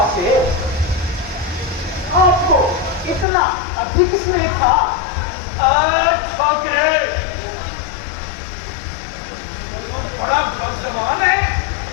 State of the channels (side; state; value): right; drops out; at 3.2 s